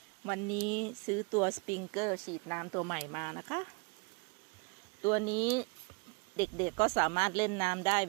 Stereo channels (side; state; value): left; quieter; 32.9 dB